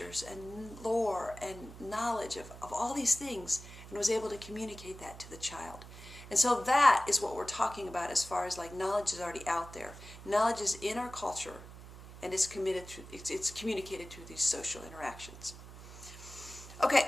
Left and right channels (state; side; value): noise; right; hum, 15 dB below the sound